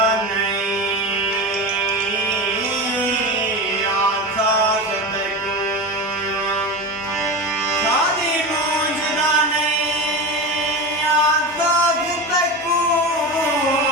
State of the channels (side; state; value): both; normal; correlation 0.24